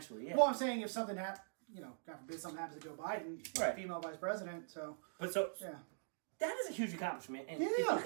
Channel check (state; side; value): silent; left; digital silence